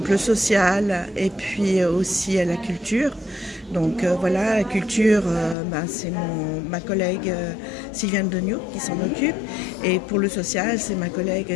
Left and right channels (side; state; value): right; drops out; at 5.6 s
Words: le social et puis aussi la culture. Donc voilà, la culture, c'est ma collègue Sylviane Degnaud qui s'en occupe. Et pour le social, c'est ma